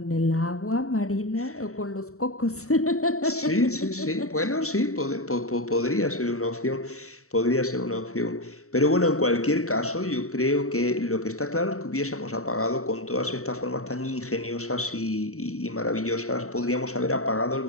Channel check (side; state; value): right; late; 0.64 ms